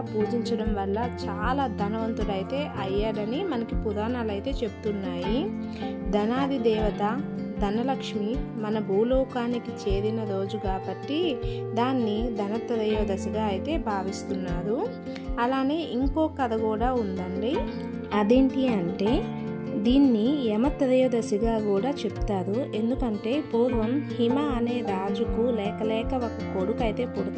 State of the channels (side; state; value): both; identical; correlation 1.00